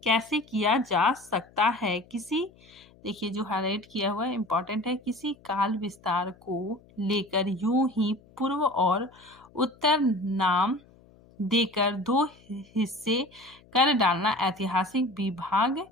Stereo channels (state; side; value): noise; left; hum, 27 dB below the sound